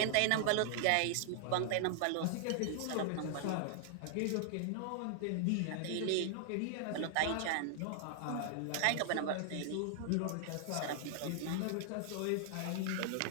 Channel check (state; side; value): different; both; correlation 0.00